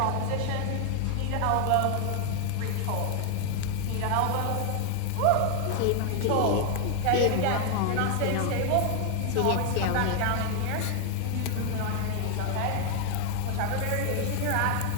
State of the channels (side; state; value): both; different; correlation 0.00